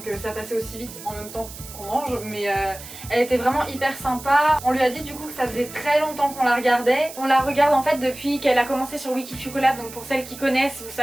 ça passait aussi vite en même temps qu'on mange, mais elle était vraiment hyper sympa. On lui a dit du coup que ça faisait très longtemps qu'on la regardait. On la regarde en fait depuis qu'elle a commencé sur Wikifucolab, donc pour celles qui connaissent vous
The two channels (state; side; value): noise; right; hiss, 14 dB below the sound